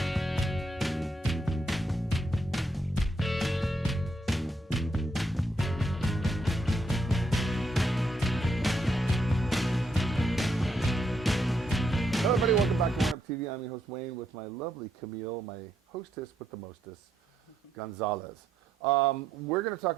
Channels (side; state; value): both; normal; correlation 0.77